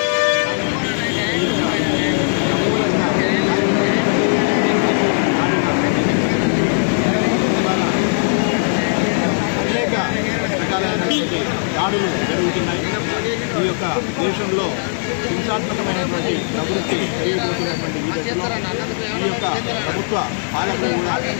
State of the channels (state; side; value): silent; right; 67 dB below the other